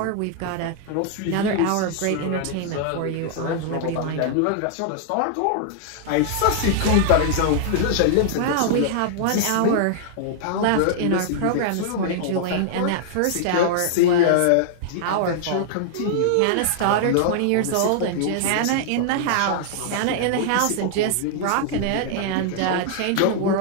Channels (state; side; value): different; both; correlation -0.01